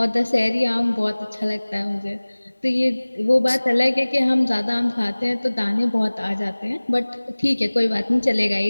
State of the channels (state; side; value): inverted; both; correlation -1.00